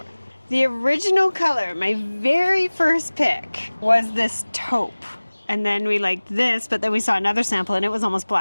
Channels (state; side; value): inverted; both; correlation -1.00